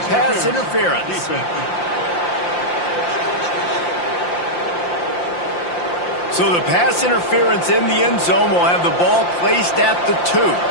pass interference. So the pass interference in the end zone will have the ball placed at the 2.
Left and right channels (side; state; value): right; late; 5.7 ms